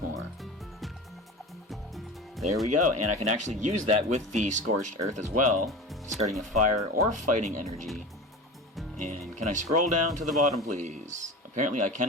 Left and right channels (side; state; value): both; normal; correlation 0.31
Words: more. There we go, and I can actually use that with the Scorched Earth as well, discarding a Fire or Fighting Energy. And can I scroll down to the bottom, please? Apparently I